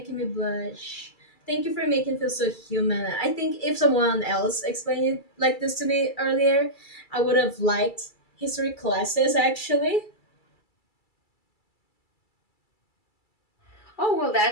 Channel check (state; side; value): late; right; 2.3 ms